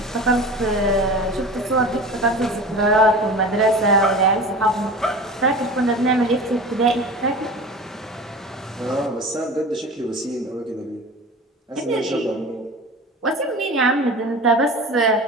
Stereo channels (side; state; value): both; normal; correlation 0.35